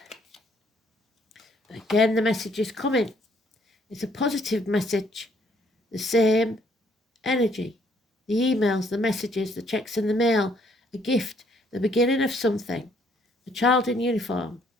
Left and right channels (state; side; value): normal; both; correlation 0.66